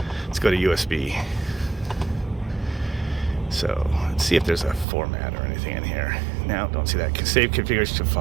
let's go to USB. So let's see if there's a format or anything in here. Now, don't see that. Save configuration to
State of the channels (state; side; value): drops out; left; at 4.9 s